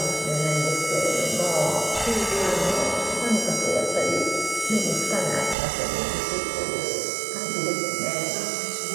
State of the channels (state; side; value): drops out; left; at 5.6 s